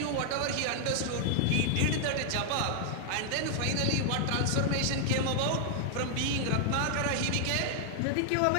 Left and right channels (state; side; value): different; both; correlation 0.00